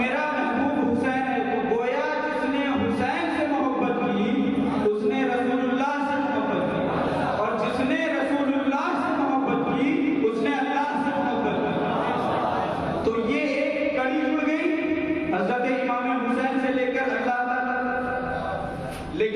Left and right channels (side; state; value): both; identical; correlation 1.00